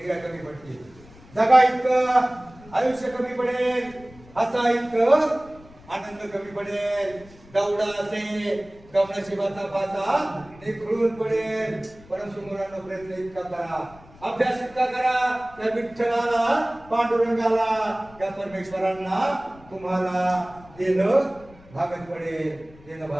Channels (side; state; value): left; noise; rumble, 23 dB below the sound